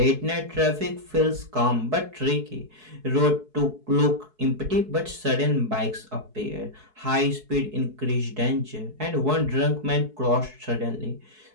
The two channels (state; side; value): late; left; 4.7 ms